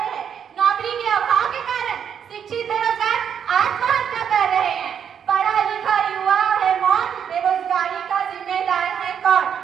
हैं। नौकरी के अभाव के कारण शिक्षित बेरोजगार आत्महत्या कर रहे हैं। पढ़ा लिखा युवा है मौन, बेरोजगारी का जिम्मेदार है कौन?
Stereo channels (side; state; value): left; quieter; 8.1 dB